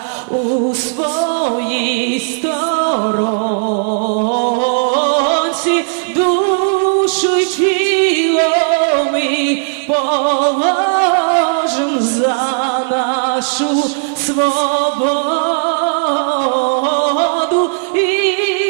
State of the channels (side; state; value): left; silent; digital silence